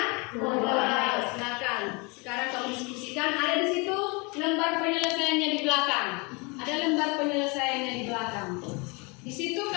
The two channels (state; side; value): quieter; right; 29.3 dB